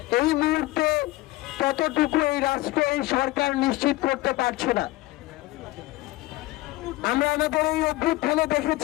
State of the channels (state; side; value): quieter; right; 18.5 dB